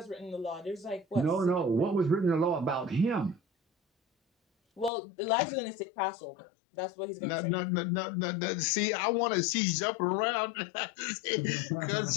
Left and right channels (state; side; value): drops out; right; at 4.9 s